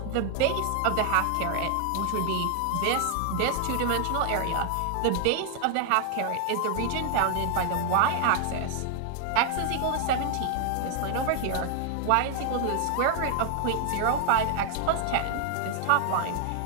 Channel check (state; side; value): different; both; correlation 0.00